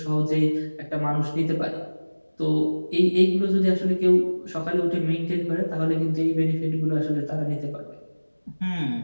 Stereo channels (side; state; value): both; inverted; correlation -1.00